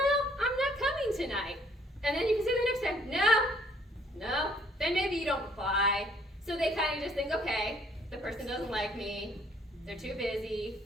I'm not coming tonight. And then you can say the next time, no, then maybe you don't reply. So they kind of just think, okay, the person doesn't like me, they're too busy,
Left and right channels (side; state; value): both; normal; correlation 0.63